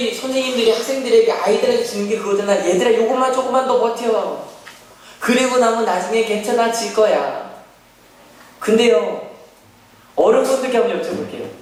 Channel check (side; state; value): both; identical; correlation 1.00